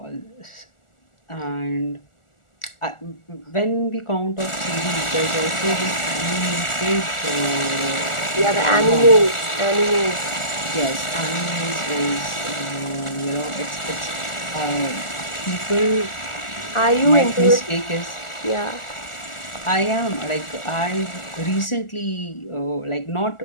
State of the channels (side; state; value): right; late; 1.4 ms